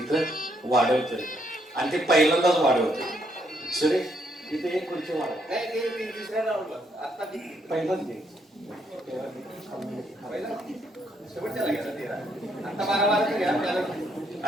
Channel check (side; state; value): both; normal; correlation 0.73